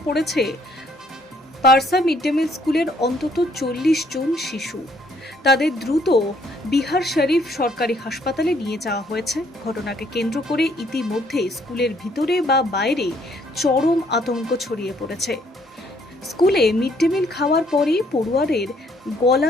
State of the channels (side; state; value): both; normal; correlation 0.66